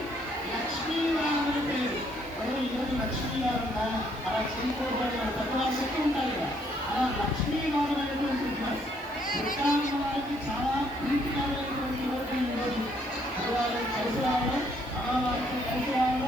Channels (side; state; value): left; noise; hiss, 27 dB below the sound